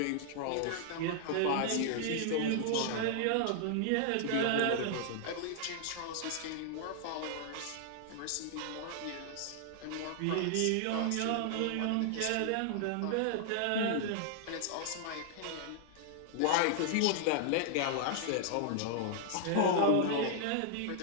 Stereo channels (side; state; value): both; different; correlation 0.00